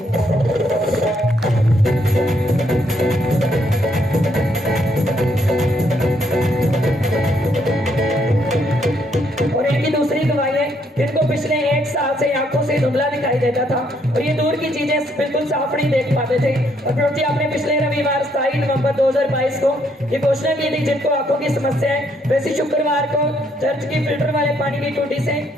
और इनकी दूसरी गवाही है, इनको पिछले 1 साल से आंखों से धुंधला दिखाई देता था और ये दूर की चीजें बिल्कुल साफ नहीं देख पाते थे और प्रभु जी आपने पिछले रविवार 27 नवंबर 2022 को ये घोषणा की थी जिनको आंखों की समस्या है वैसे शुक्रवार को चर्च की फिल्टर वाले पानी की टूटी से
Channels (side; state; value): both; normal; correlation 0.72